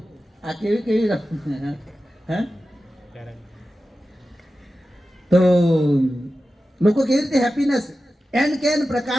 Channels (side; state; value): both; normal; correlation 0.93